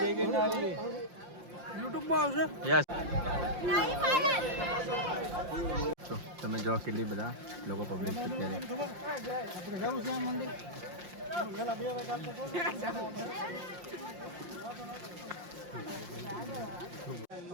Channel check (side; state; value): left; late; 5.7 ms